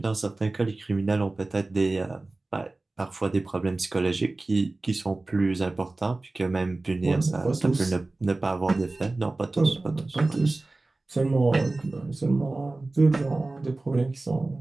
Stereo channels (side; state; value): left; quieter; 3.1 dB